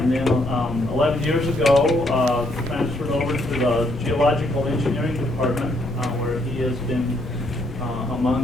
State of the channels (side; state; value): left; noise; rumble, 11 dB below the sound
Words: then 11 years ago transferred over to the Geological Engineering Department, where he has been,